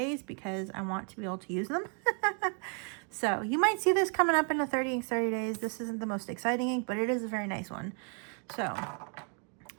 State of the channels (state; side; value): quieter; left; 39.5 dB